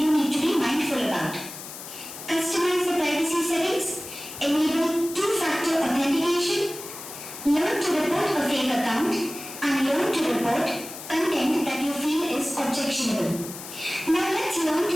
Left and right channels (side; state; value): left; noise; hiss, 12 dB below the sound